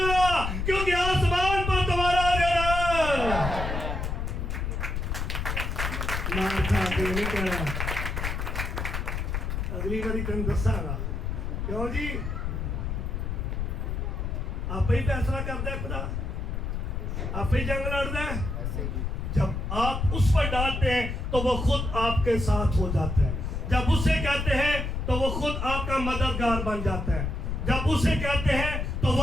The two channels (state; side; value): noise; left; rumble, 2 dB below the sound